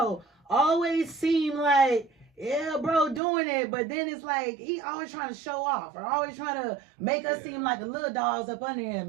always seem like, yeah, bro, doing it, but then it's like he always trying to show off or always trying to make us seem like the little dogs up under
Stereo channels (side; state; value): left; drops out; at 3.2 s